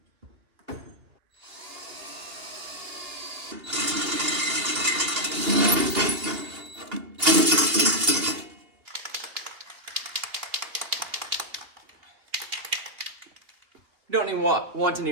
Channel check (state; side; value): late; left; 2.8 ms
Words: Don't even want any